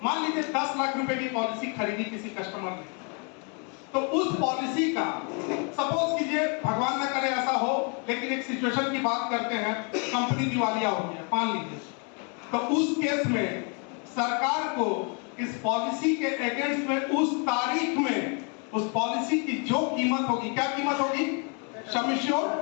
मान लीजिए 10 लाख रुपए की पॉलिसी खरीदी किसी कस्टमर ने, तो उस पॉलिसी का सपोज कीजिए, भगवान न करे ऐसा हो, लेकिन एक सिचुएशन की बात करते हैं, कंपनी दिवालिया हो गया मान लीजिए, तो उस केस में सरकार को इस पॉलिसी के अगेंस्ट में उस तारीख में उस पॉलिसी की जो कीमत होगी, क्या कीमत होगी? सम एश्योर्ड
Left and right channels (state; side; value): quieter; right; 36.7 dB